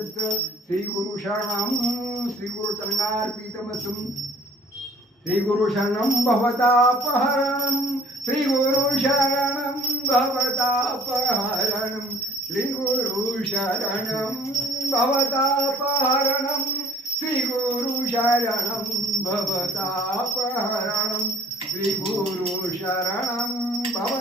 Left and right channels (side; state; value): both; normal; correlation 0.53